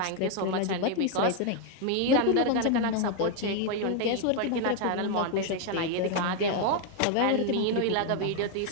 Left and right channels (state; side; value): different; both; correlation 0.01